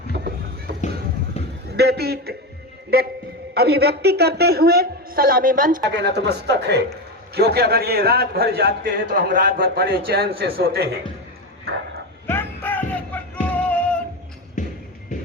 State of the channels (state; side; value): normal; both; correlation 0.17